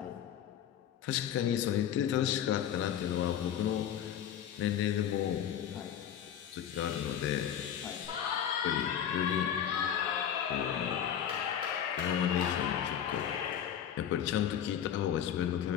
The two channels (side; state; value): right; quieter; 9.5 dB